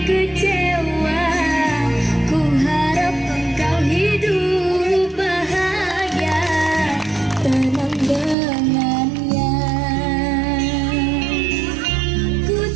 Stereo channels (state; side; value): drops out; left; at 8.3 s